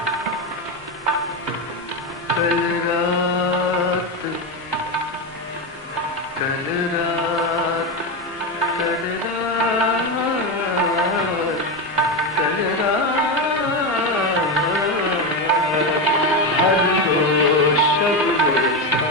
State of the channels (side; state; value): both; normal; correlation 0.13